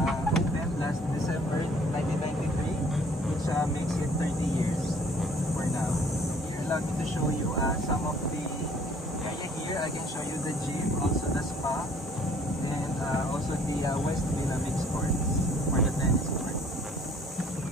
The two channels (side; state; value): both; normal; correlation 0.57